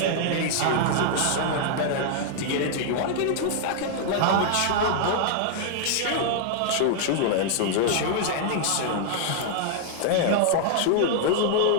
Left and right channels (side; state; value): both; different; correlation -0.01